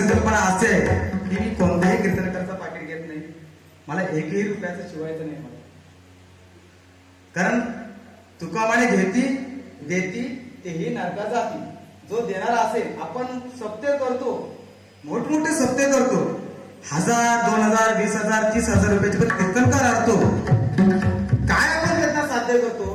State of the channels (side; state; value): both; identical; correlation 1.00